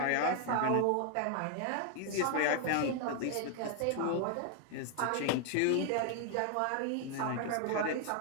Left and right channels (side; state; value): both; different; correlation 0.00